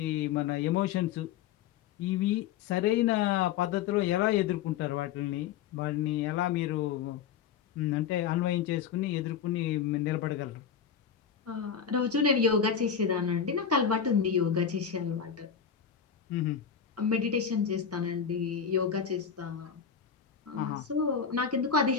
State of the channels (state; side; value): quieter; right; 7.7 dB